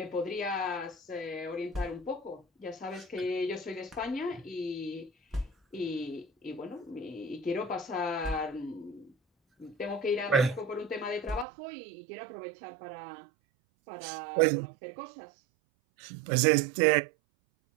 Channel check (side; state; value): left; drops out; at 11.5 s